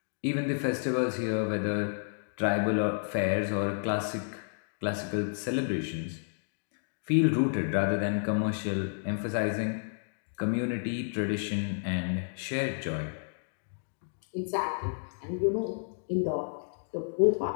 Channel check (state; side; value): silent; right; digital silence